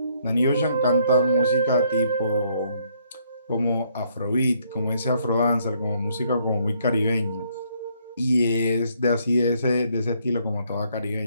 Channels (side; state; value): both; inverted; correlation -0.69